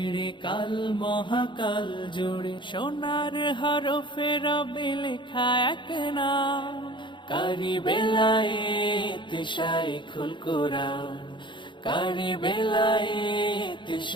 কাল মহাকাল জুড়ে। সোনার হরফে রবে লেখা এক নাম, কারি বেলায়েত শাইখুল কোরআন, কারি বেলায়েত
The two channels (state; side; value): late; right; 0.23 ms